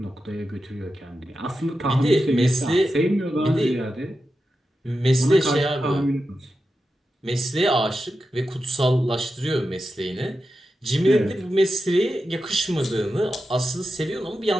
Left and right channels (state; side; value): normal; both; correlation 0.90